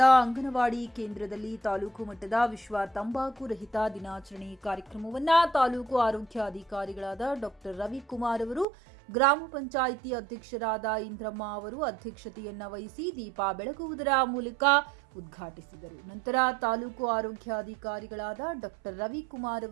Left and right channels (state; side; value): drops out; left; at 8.7 s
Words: ಅಂಗನವಾಡಿ ಕೇಂದ್ರದಲ್ಲಿ ತಾಲೂಕು ಮಟ್ಟದ ವಿಶ್ವ ತಂಬಾಕು ರಹಿತ ದಿನಾಚರಣೆ ಕಾರ್ಯಕ್ರಮವನ್ನು ತಾಲೂಕು ಆರೋಗ್ಯಾಧಿಕಾರಿಗಳಾದ ಡಾಕ್ಟರ್ ರವಿಕುಮಾರ್ ಅವರು, ಗ್ರಾಮ ಪಂಚಾಯಿತಿ ಅಧ್ಯಕ್ಷರಾದ ಇಂದ್ರಮ್ಮ ಅವರು ಅಧ್ಯಕ್ಷತೆಯನ್ನ ವಹಿಸಿ ದೀಪ ಬೆಳಗುವುದರ ಮೂಲಕ ಉದ್ಘಾಟಿಸಿದರು. ನಂತರ ತಾಲೂಕು ಆರೋಗ್ಯಾಧಿಕಾರಿಗಳಾದ ಡಾಕ್ಟರ್ ರವಿಕುಮಾರ್